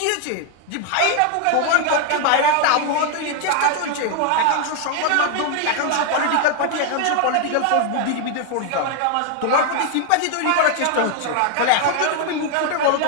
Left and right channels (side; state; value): both; different; correlation 0.00